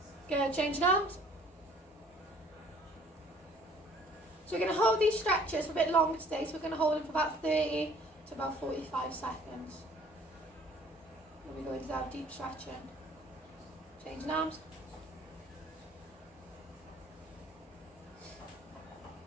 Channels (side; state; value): both; normal; correlation 0.55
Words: Good, changing arms. So we're going to hold these stretches for a bit longer today, so we're going to hold them for about 30 to about 45 seconds. Then we go into our deep stretching. Changing arms.